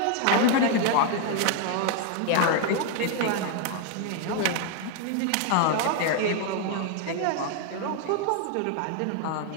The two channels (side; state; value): both; different; correlation 0.00